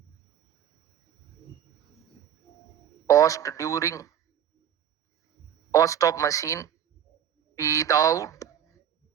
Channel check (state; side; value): quieter; left; 9.4 dB